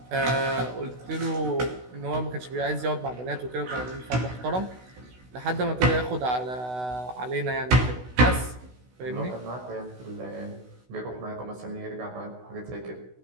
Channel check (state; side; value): late; left; 16 ms